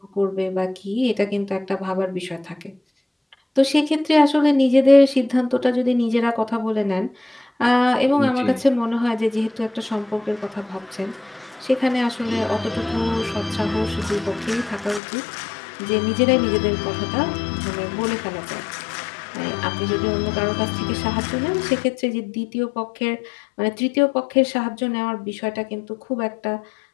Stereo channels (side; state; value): right; drops out; at 15.0 s